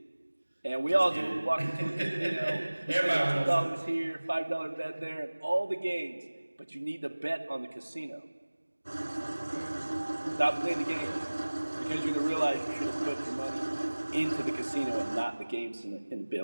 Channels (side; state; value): both; inverted; correlation -1.00